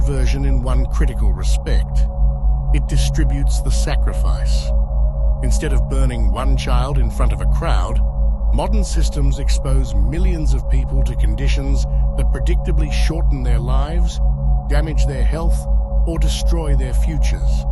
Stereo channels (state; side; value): identical; both; correlation 1.00